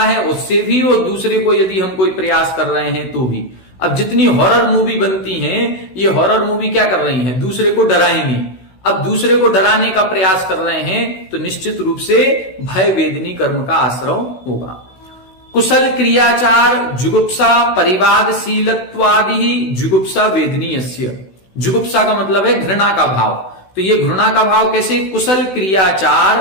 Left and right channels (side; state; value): right; late; 16 ms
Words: है उससे भी, और दूसरे को यदि हम कोई प्रयास कर रहे हैं तो भी। अब जितनी हॉरर मूवी बनती हैं, ये हॉरर मूवी क्या कर रही हैं? दूसरे को डराएंगी। अब दूसरे को डराने का प्रयास कर रहे हैं तो निश्चित रूप से भय वेदनी कर्म का आश्रय होगा। कुशल क्रियाचार जुगुप्सा परिवादशीलत्वादि जुगुप्सा वेदनीय। जुगुप्सा का मतलब है घृणा का भाव। तो ये घृणा का भाव कैसे? कुशल